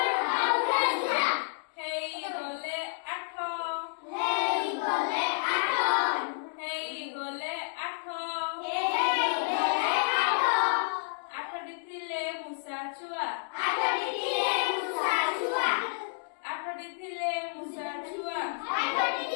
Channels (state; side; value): silent; right; digital silence